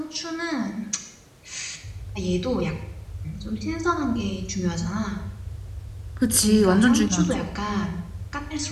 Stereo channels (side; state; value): both; identical; correlation 1.00